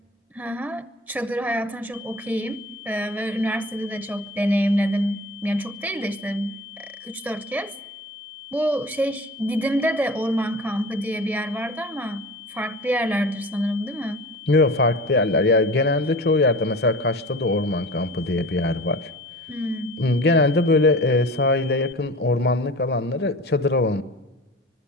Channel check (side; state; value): both; normal; correlation 0.38